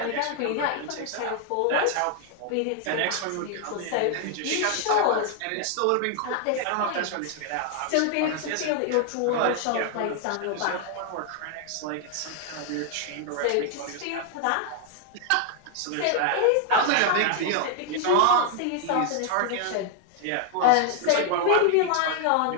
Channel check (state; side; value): different; both; correlation 0.00